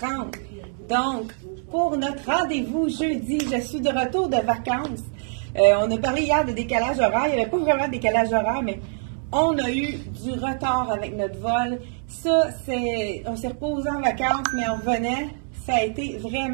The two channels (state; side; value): silent; left; 62 dB below the other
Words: Donc, pour notre rendez-vous jeudi, je suis de retour de vacances. On a parlé hier de décalage horaire. Il n'y avait pas vraiment de décalage horaire, mais on a eu du retard avec notre vol. Ça, on s'est reposé en vacances, mais on revenait. Ça a été